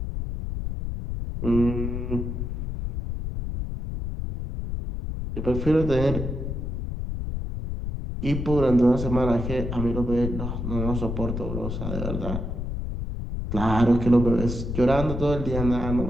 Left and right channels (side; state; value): left; noise; rumble, 4 dB below the sound